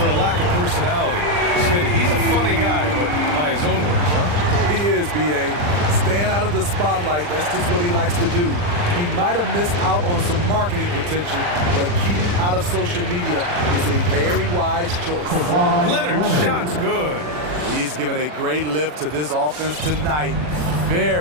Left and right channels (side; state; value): left; late; 40 ms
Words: a lack of personality. Smitty, he's a funny guy, but by his own words, huh? He is, B.A. Staying out of the spotlight, that's just what he likes to do. He might have missed out on some marketing potential, but keeping out of social media is a very wise choice. Leonard's shot's good. He's given a great lift to this offense tonight.